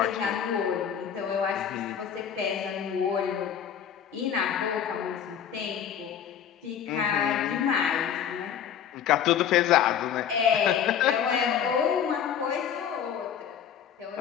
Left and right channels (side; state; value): right; quieter; 8.6 dB